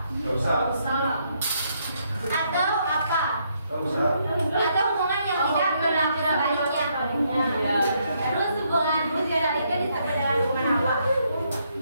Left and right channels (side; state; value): both; inverted; correlation -0.74